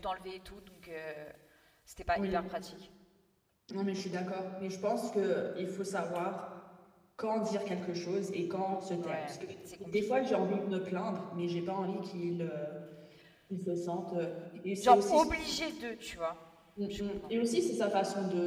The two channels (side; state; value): both; identical; correlation 1.00